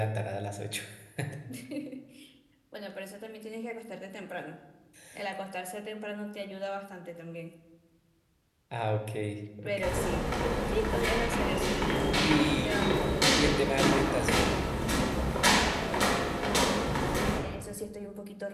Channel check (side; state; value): both; identical; correlation 1.00